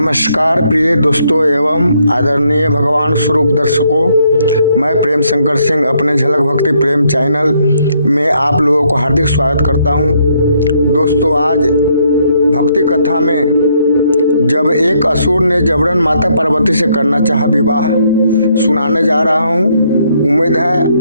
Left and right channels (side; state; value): both; inverted; correlation -0.71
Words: प्रिय दोस्तों एवं आदरणीय भगवान स्वरूप दर्शकों, मैं प्रेम शंकर सिंह अपने झलक भक्ति प्रेम चैनल में आप लोगों को हार्दिक स्वागत करता हूं। दोस्तों, आज भक्ति कथा में जब एक असुर ने जबरन माता पार्वती से करना चाहा विवाह सुनाने जा रहा हूं। उम्मीद